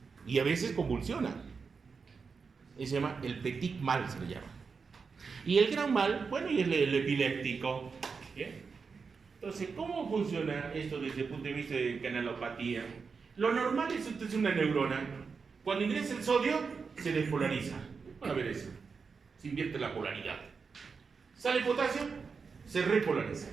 Y a veces convulsionan. Se llama el petit mal, se le llama. Y el gran mal, bueno, y el epiléptico. ¿Bien? Entonces, ¿cómo funciona esto desde el punto de vista de canalopatía? Lo normal es usted es una neurona. Cuando ingresa el sodio, se despolariza. Van a ver eso. Se invierte la polaridad. Sale el potasio, se repolariza.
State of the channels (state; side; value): quieter; left; 5.2 dB